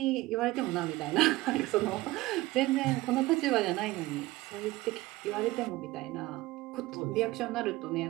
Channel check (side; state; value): left; quieter; 18.8 dB